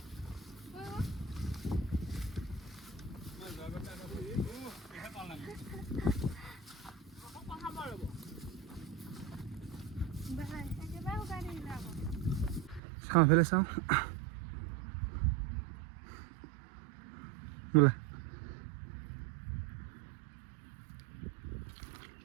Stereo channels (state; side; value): drops out; left; at 12.8 s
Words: চাওঁ ফেলে চাওঁ বোলা